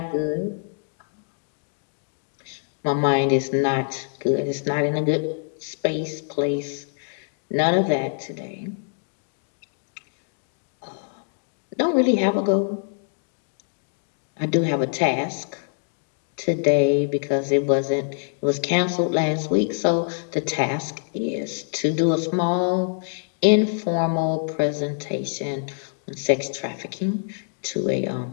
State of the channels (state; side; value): silent; right; 62 dB below the other